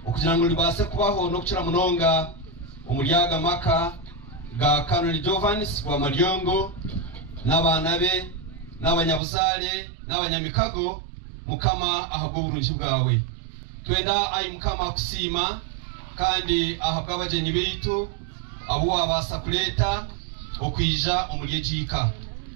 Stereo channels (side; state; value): left; drops out; at 9.2 s